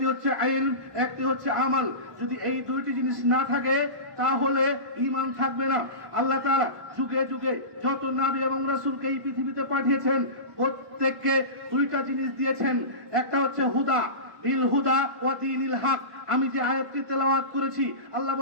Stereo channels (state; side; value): late; left; 1.5 ms